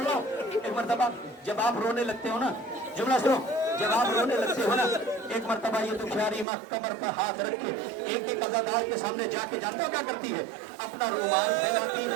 रहा हूँ। एक मर्तबा जब आप रोने लगते हो ना, जुमला सुनो, जब आप रोने लगते हो ना, एक मर्तबा ये दुखियारी माँ कमर पर हाथ रख के एक एक अज़ादार के सामने जाके, जानते हो क्या करती है, अपना रुमाल फैलाती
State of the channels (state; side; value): drops out; left; at 6.5 s